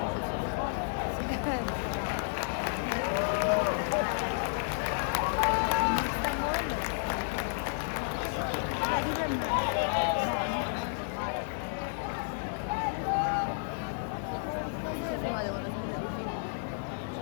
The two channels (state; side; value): silent; right; 57 dB below the other